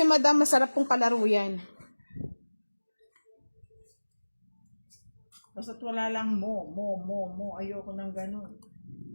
madam, masarap pong kalaro yan. Basta't wala lang mo. Ayoko ng ganun.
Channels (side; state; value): both; inverted; correlation -1.00